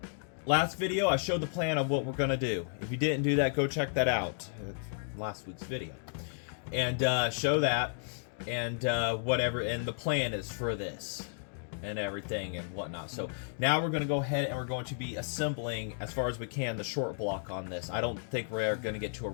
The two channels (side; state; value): right; silent; digital silence